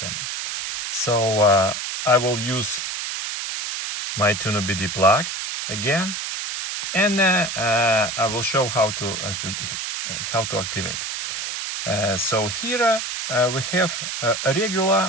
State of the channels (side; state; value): right; noise; hiss, 4 dB below the sound